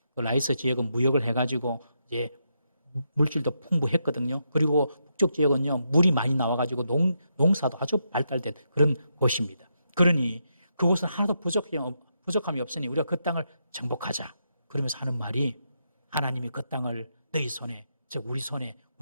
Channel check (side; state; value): both; inverted; correlation -0.82